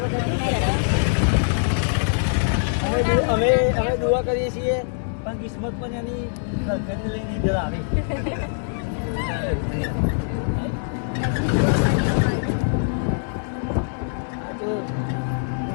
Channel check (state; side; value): silent; right; digital silence